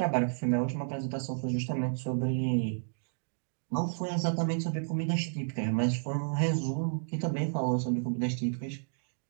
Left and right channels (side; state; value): left; silent; digital silence